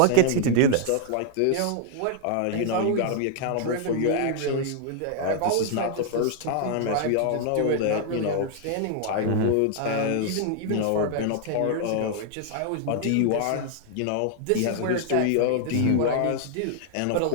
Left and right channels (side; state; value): both; different; correlation 0.00